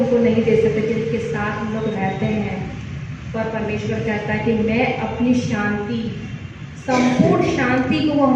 नहीं दे सकते जिनके साथ हम लोग रहते हैं, पर परमेश्वर कहता है कि मैं अपनी शांति, संपूर्ण शांति को वो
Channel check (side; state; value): both; identical; correlation 1.00